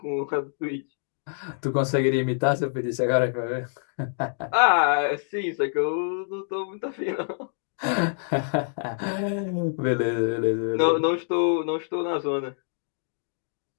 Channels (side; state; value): right; silent; digital silence